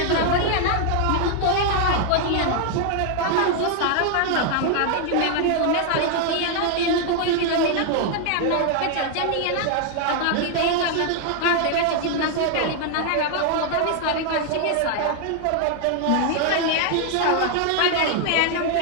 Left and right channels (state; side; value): different; both; correlation 0.00